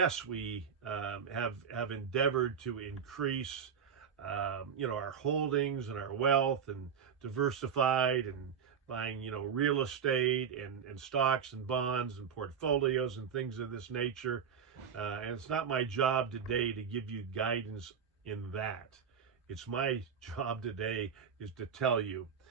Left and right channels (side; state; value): left; quieter; 7.2 dB